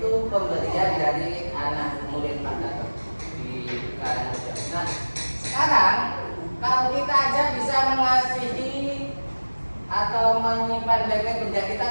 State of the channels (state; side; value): inverted; both; correlation -1.00